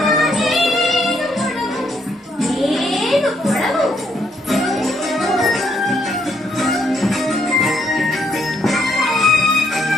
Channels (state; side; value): normal; both; correlation 0.73